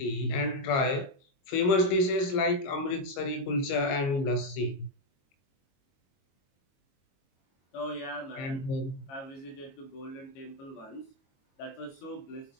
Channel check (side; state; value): right; late; 22 ms